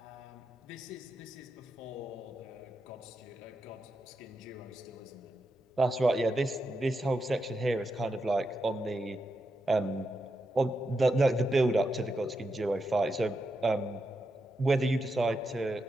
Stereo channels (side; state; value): both; normal; correlation 0.86